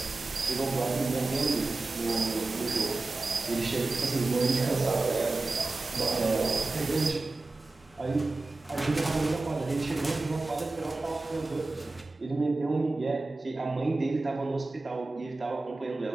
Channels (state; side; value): quieter; left; 3.3 dB